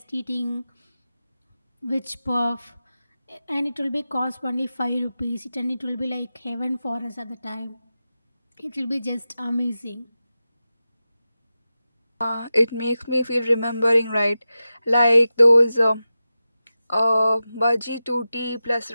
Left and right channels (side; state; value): both; inverted; correlation -0.93